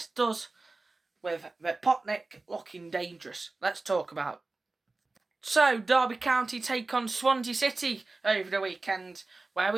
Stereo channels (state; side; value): quieter; left; 3.4 dB